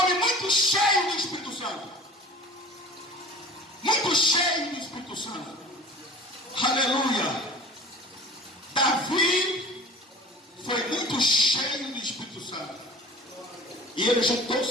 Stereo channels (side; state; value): both; normal; correlation 0.43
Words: muito cheio do Espírito Santo. Muito cheio do Espírito Santo. Aleluia. Davi foi muito cheio do Espírito Santo. E ele juntou